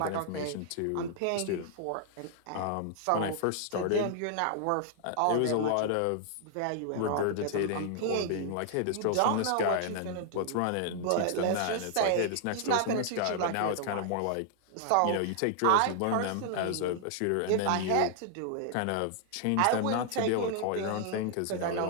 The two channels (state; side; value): different; both; correlation 0.00